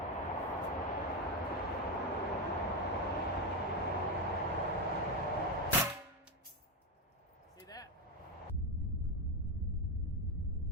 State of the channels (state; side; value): normal; both; correlation 0.10